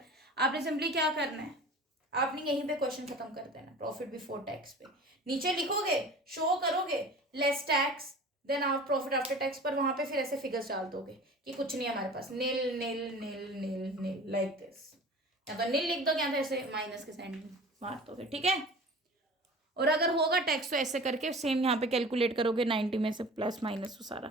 आपने सिंपली क्या करना है, आपने यहीं पे क्वेश्चन खत्म कर देना, प्रॉफिट बिफोर टैक्स पे नीचे लिखोगे, शो करोगे लेस टैक्स, देन आप प्रॉफिट आफ्टर टैक्स पर वहां पे फिर ऐसे फिगर्स डाल दोगे कि कुछ नहीं है हमारे पास, नील नील नील नील नील, लाइक दिस, या तो नील लिख दो, या तो ऐसे माइनस के साइन मार दोगे, ठीक है। और अगर होगा टैक्स तो ऐसे करके सेम यहाँ पे कैलकुलेट करोगे, 90 में से प्लस माइनस सारा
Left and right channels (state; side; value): normal; both; correlation 0.40